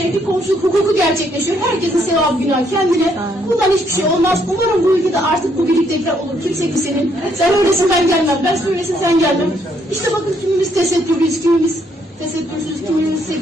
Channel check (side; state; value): both; normal; correlation 0.71